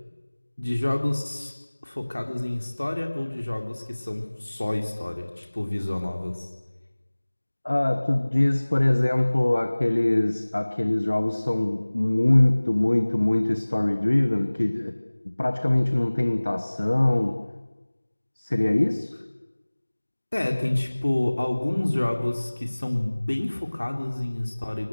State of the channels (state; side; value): inverted; both; correlation -1.00